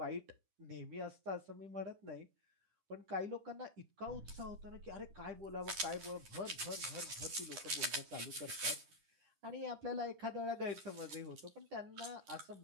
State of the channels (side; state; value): left; late; 10 ms